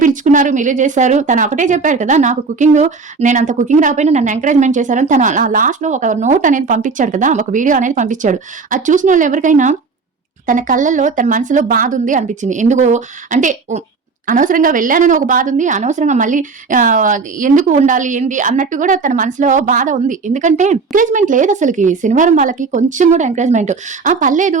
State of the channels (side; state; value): left; quieter; 4.6 dB